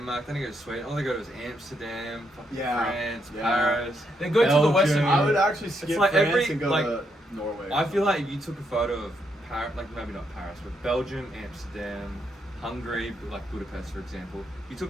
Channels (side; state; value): both; normal; correlation 0.78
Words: they don't go to Sweden. All they go to is Amsterdam, fucking Yeah, France, yeah. Paris. They go to the Belgium. Western. I would actually skip like France every- and go like, to Norway. I feel like if you took a photo of Paris, like maybe not Paris, but Belgium, Amsterdam, Hungary, like Budapest, for example. You